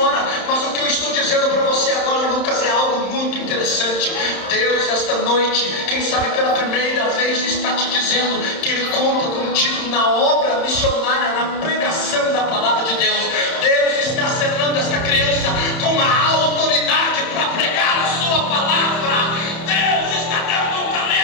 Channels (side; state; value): right; late; 30 ms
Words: Mas o que eu estou dizendo para você agora, Lucas, é algo muito interessante. Deus, esta noite, quem sabe pela primeira vez, está te dizendo que Ele conta contigo na obra missionária, na pregação da palavra de Deus. Deus está selando esta criança com a autoridade para pregar a sua palavra. Deus está dando um